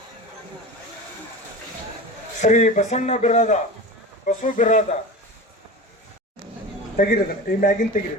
ಶ್ರೀ ಬಸಣ್ಣ ಬಿರಾದ, ಬಸವ ಬಿರಾದ ತೆಗಿರಿದ ಈ ಮ್ಯಾಗಿನ್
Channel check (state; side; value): normal; both; correlation 0.31